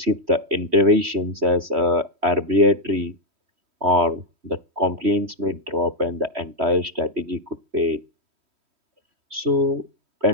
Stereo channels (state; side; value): late; left; 3.1 ms